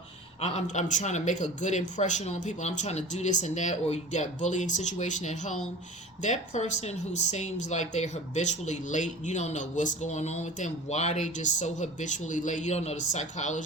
I'm trying to make a good impression on people. I'm trying to do this and that, or you got bullying situation at home. That person who seems like they're habitually late, you don't know what's going on with them, why they just so habitually late. You don't know the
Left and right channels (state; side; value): normal; both; correlation 0.38